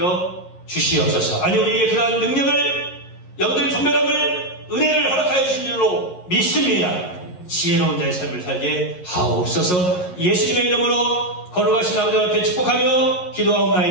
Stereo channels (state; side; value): late; right; 11 ms